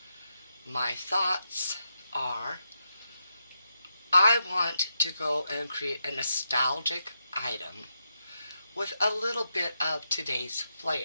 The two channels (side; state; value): both; inverted; correlation -0.85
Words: My thoughts are I want to go and create a nostalgic item with a little bit of today's